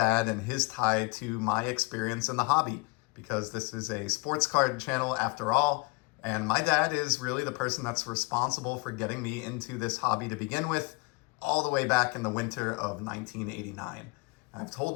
and his tie to my experience in the hobby, because this is a sports card channel after all. And my dad is really the person that's responsible for getting me into this hobby to begin with, all the way back in the winter of 1989. I've told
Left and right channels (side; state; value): right; quieter; 28.3 dB